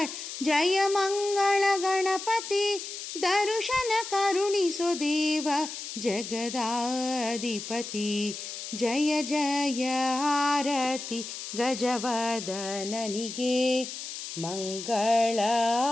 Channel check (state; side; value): noise; left; hiss, 8 dB below the sound